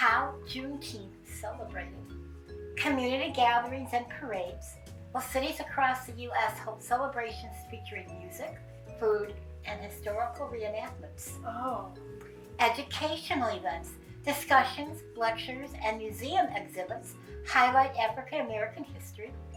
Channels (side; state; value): both; identical; correlation 1.00